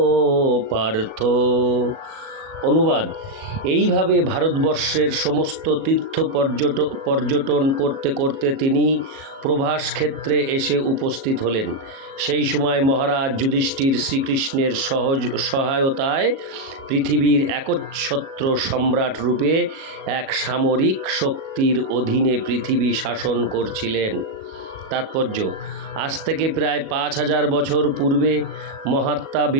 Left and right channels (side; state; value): left; late; 37 ms